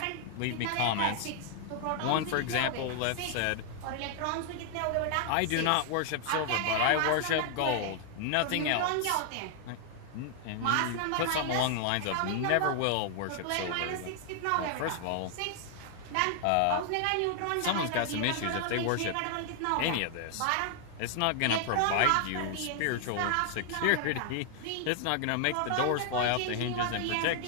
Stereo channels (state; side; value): different; both; correlation 0.00